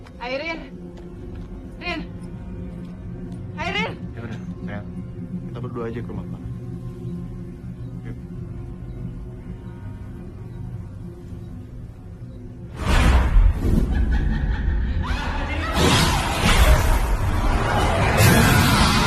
Rin. Airin. Ya udah, sayang. Kita berdua aja ke rumah Farah. Yuk.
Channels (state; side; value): identical; both; correlation 1.00